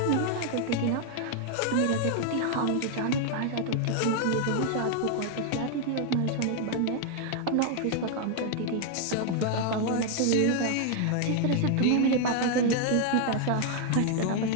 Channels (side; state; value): both; different; correlation 0.00